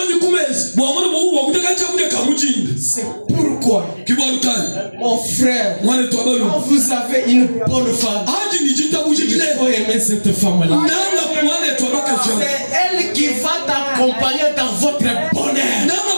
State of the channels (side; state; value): both; inverted; correlation -1.00